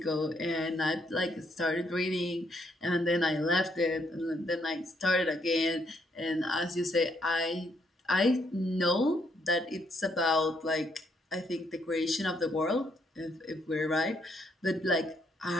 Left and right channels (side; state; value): both; normal; correlation 0.73